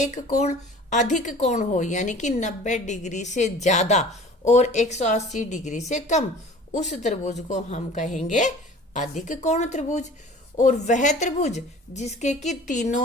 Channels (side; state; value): both; normal; correlation 0.45